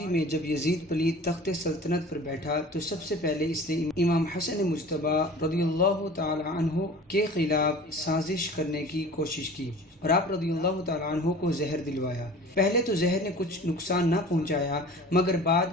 میں جب یزید پلید تخت سلطنت پر بیٹھا تو سب سے پہلے اس نے امام حسن مجتبی رضی اللہ تعالی عنہ کے خلاف سازش کرنے کی کوشش کی اور آپ رضی اللہ تعالی عنہ کو زہر دلوایا۔ پہلے تو زہر نے کچھ نقصان نہ پہنچایا، مگر بعد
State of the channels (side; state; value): both; normal; correlation 0.42